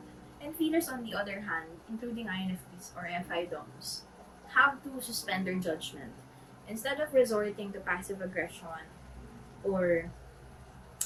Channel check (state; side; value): identical; both; correlation 1.00